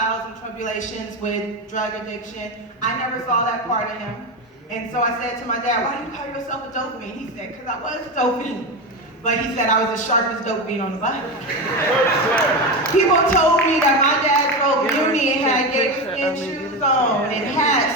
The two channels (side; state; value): both; normal; correlation 0.18